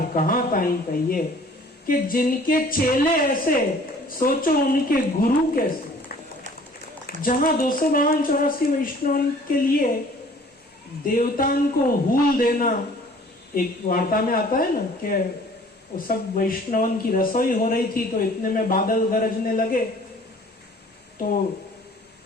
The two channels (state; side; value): normal; both; correlation 0.52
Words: कहां ताई कहिए, कि जिनके चेले ऐसे सोचो उनके गुरु कैसे। जहां 252-84 वैष्णव के लिए देवताओं को हूल देना एक वार्ता में आता है ना, कि वो सब वैष्णवन की रसोई हो रही थी तो इतने में बादल गरजने लगे तो